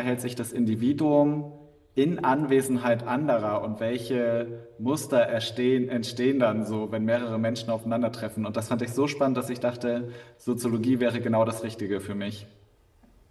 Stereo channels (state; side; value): identical; both; correlation 1.00